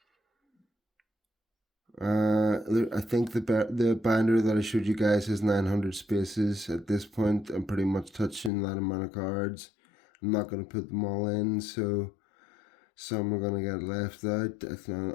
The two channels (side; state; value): right; drops out; at 8.5 s